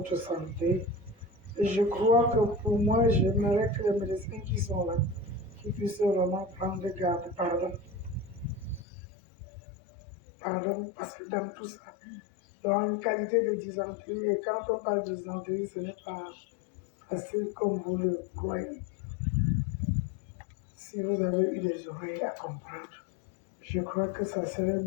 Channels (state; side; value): drops out; right; at 8.8 s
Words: santé. Et je crois que pour moi, j'aimerais que les médecins qui sont là, qui puissent vraiment prendre garde. Pardon, parce que dans tout ça, il y a une qualité de dysenterie. Et quand on parle de dysenterie, ce n'est pas facile comme vous le croyez. Si vous avez eu des oreilles à comprendre, je crois que ça serait